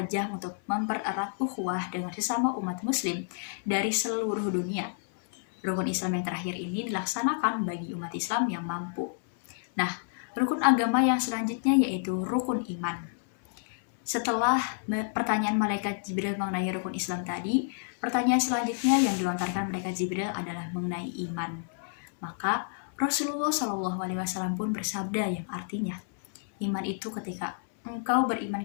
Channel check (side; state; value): right; silent; 58 dB below the other